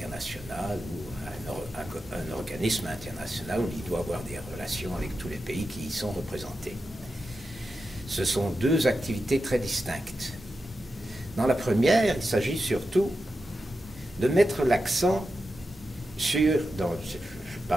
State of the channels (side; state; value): both; normal; correlation 0.90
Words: ou à un organisme international où il doit avoir des relations avec tous les pays qui y sont représentés. Ce sont deux activités très distinctes. Dans la première, il s'agit surtout de mettre l'accent je